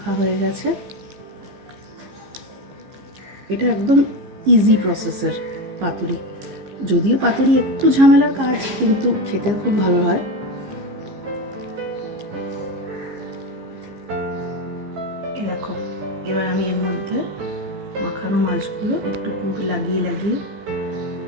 হয়ে গেছে। এটা একদম ইজি প্রসেসের পাতুরি, যদিও পাতুরি একটু ঝামেলার কাজ, কিন্তু খেতে খুব ভালো হয়। দেখো এবার আমি এর মধ্যে মাখানো মাছগুলো একটু পুর লাগিয়ে লাগিয়ে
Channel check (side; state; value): left; late; 15 ms